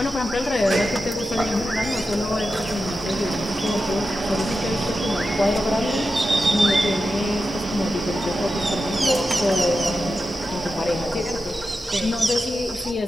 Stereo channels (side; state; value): both; normal; correlation 0.91